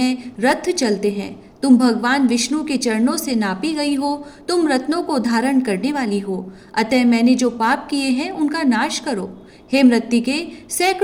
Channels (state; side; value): identical; both; correlation 1.00